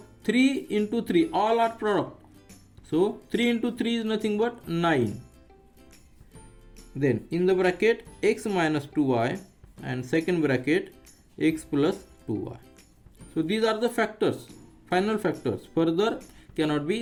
3 into 3 all are product, so 3 into 3 is nothing but 9. Then in the bracket x minus 2y and second bracket x plus 2y. So these are the factors, final factors, further cannot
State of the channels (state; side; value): identical; both; correlation 1.00